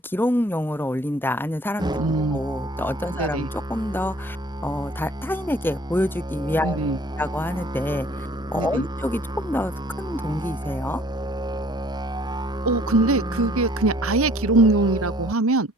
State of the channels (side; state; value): both; normal; correlation 0.55